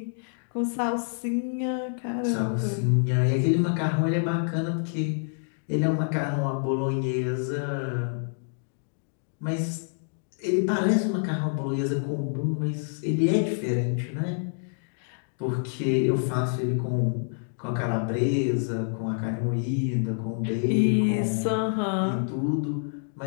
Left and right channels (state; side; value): silent; right; digital silence